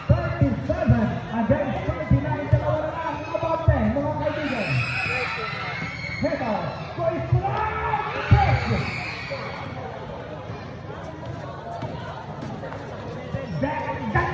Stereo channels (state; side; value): identical; both; correlation 1.00